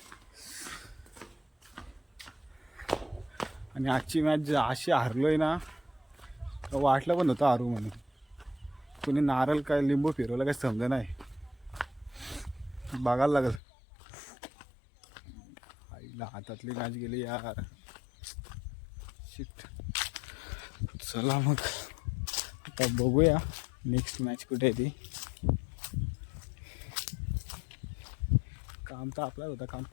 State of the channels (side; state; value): right; drops out; at 13.6 s